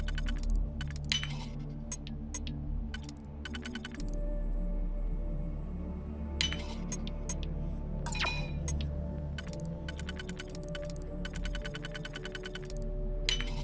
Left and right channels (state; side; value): identical; both; correlation 1.00